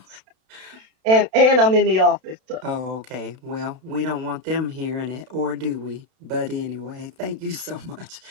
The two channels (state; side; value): late; left; 31 ms